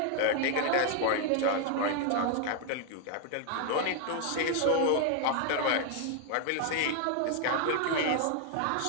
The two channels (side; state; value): both; different; correlation 0.00